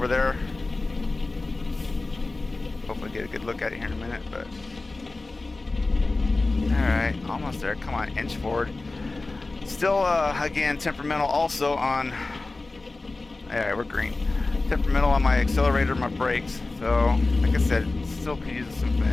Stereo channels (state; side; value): quieter; right; 3.3 dB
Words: there. Hopefully get a good look at it here in a minute, but alright, almost there. Come on, inch forward. Still, again, temperamental also on, alright, we're green. Temperamental on my accelerator, my brakes. So, like I said, still could use some